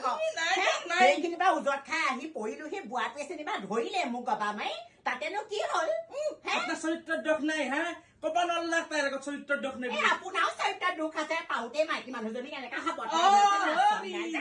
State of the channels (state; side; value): identical; both; correlation 1.00